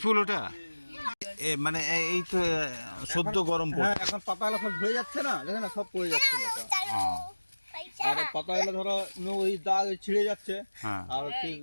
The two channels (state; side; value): inverted; both; correlation -1.00